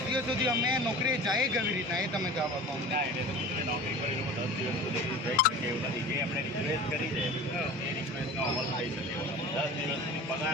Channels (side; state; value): both; normal; correlation 0.37